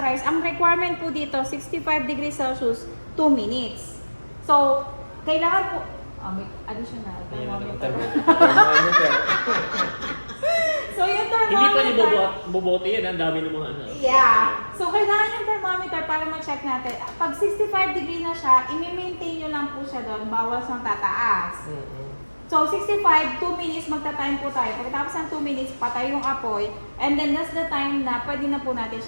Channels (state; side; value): inverted; both; correlation -1.00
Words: ang requirement po dito, 65 degrees Celsius, 2 minutes. So, kailangan po, may additional thermometer. So, yung Hindi pa thermometer, bobote yan. Ang dami ng mga ano. yeah. So, kailangan yung thermometer para ma-check natin. Pag 65 degree na siya, i-maintain nyo lang po siya doon, bawal siyang tataas. So, 65, 2 minutes magta-time po tayo. Pagkatapos ng 2 minutes, patay yung apoy. And then, that's the time na pwede na po natin